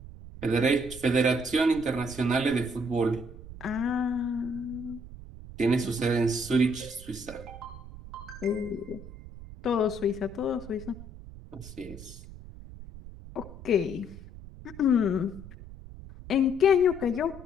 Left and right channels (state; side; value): noise; right; rumble, 15 dB below the sound